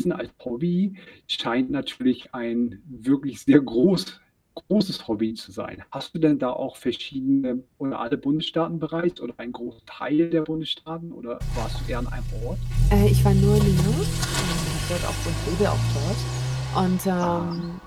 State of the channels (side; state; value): both; identical; correlation 1.00